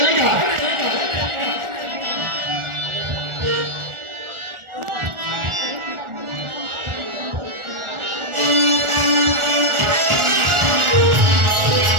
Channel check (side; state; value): left; late; 1.4 ms